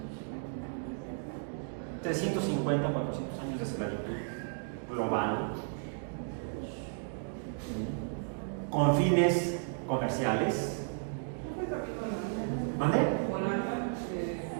350, 400 años de esclavitud global, con fines comerciales. ¿Vale?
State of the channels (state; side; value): silent; left; digital silence